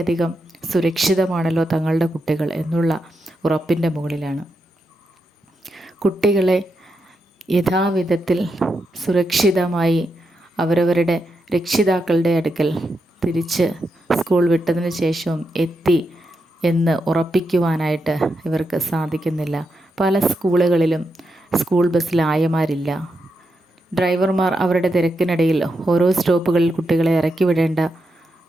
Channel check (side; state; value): both; normal; correlation 0.85